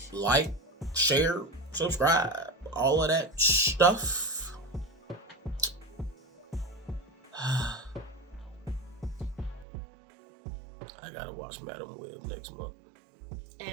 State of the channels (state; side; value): drops out; left; at 9.7 s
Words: Like, share, subscribe, all of that stuff. I gotta watch Madam Web next month.